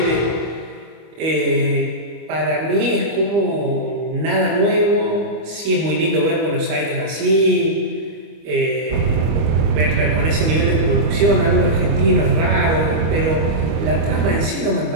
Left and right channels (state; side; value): late; left; 25 ms